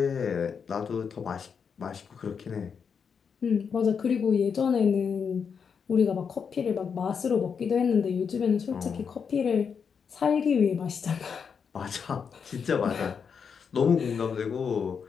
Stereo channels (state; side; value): quieter; right; 6.4 dB